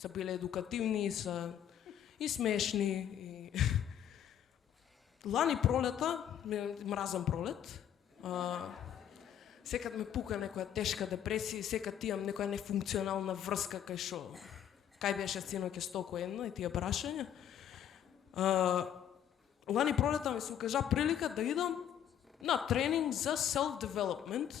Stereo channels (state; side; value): quieter; right; 9.9 dB